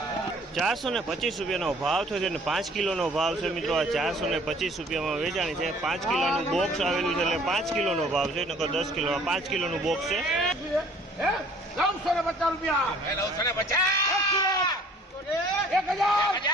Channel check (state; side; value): normal; both; correlation 0.54